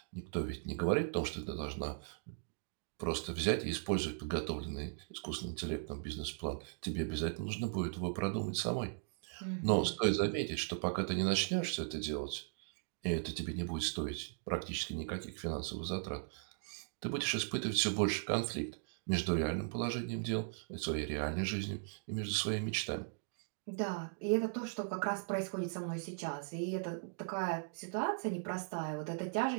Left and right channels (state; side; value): silent; left; digital silence